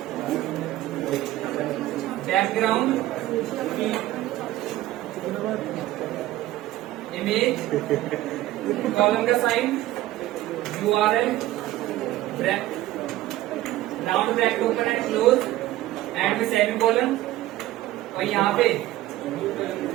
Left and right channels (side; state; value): left; quieter; 15.6 dB